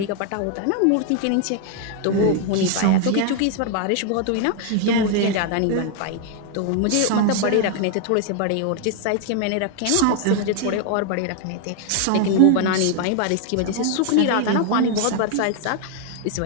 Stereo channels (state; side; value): different; both; correlation 0.00